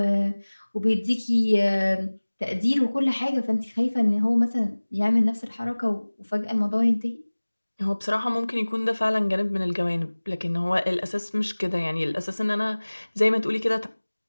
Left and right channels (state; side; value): inverted; both; correlation -1.00